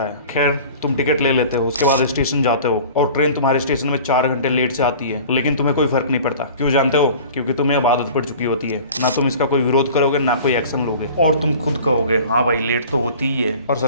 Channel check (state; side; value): inverted; both; correlation -0.43